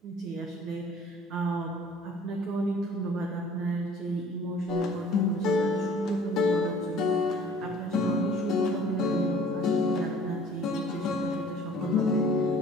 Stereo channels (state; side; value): normal; both; correlation 0.52